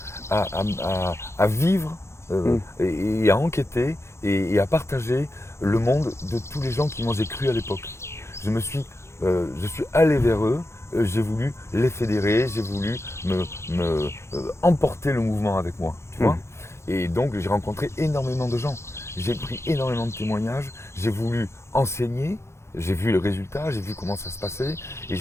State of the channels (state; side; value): late; right; 0.13 ms